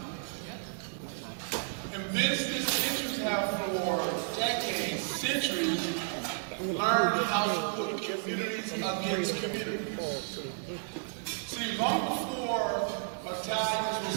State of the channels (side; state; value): left; silent; digital silence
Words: And business interests have for decades, centuries, learned how to put communities against communities. See, long before Italians was